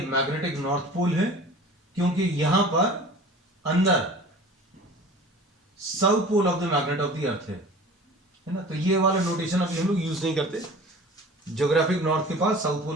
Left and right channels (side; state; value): both; normal; correlation 0.42